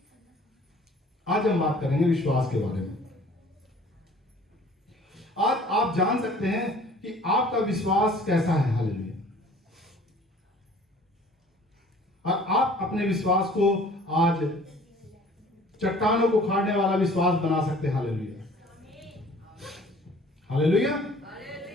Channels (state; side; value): normal; both; correlation 0.51